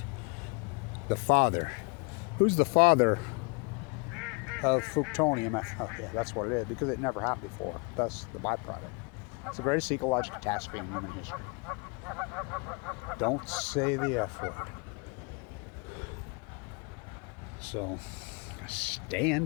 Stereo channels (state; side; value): quieter; right; 31.9 dB